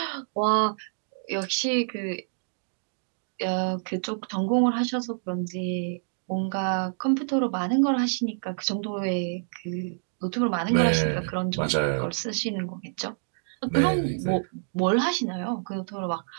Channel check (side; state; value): left; silent; digital silence